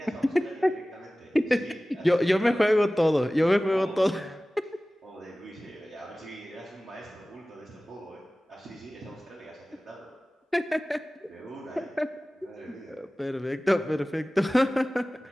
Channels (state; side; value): normal; both; correlation 0.97